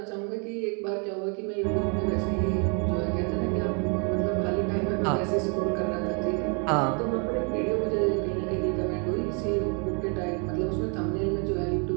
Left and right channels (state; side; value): quieter; left; 37.3 dB